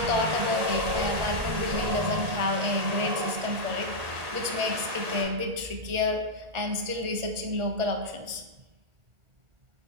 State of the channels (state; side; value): late; left; 1.8 ms